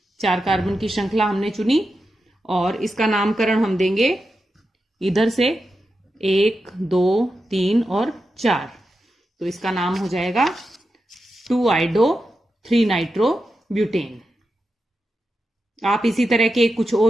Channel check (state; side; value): normal; both; correlation 0.89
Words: 4 कार्बन की श्रृंखला हमने चुनी और इसका नामकरण हम देंगे इधर से 1 2 3 और 4, तो इसका नाम हो जाएगा 2 आइडो 3 नाइट्रो ब्यूटेन। आप इसी तरह के कुछ